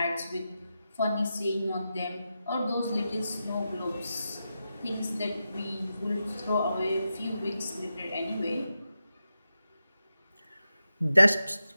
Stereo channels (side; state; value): both; inverted; correlation -0.89